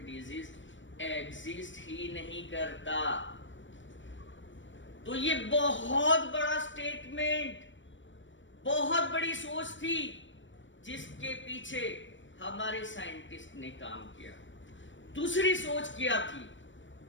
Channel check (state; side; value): late; right; 0.55 ms